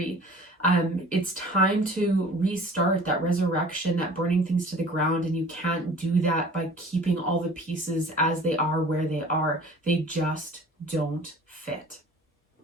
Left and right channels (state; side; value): normal; both; correlation 0.46